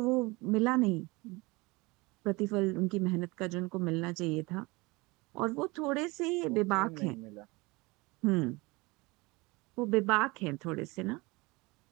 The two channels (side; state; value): left; quieter; 24.2 dB